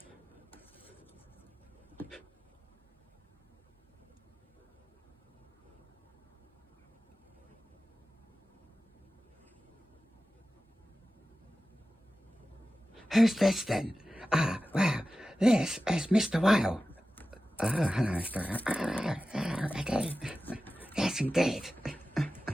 Who's this then? Well, this is Mr. Whale. Oh, hello, Mr. Whale. Hello, Eddie. Yes, indeed.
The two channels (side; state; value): both; normal; correlation 0.94